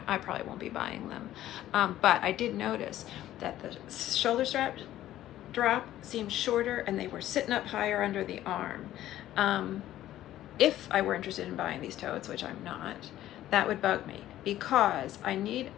I probably won't be buying them. But I did notice that the shoulder strap drop seemed shorter, and they were sitting up higher under the arm. If I were interested in buying these totes, which I'm not, that would bug me, because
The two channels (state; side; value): quieter; right; 13.5 dB